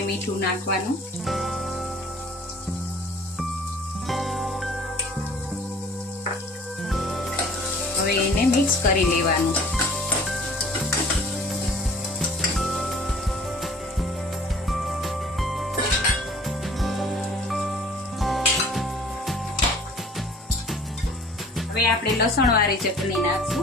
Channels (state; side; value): normal; both; correlation 0.50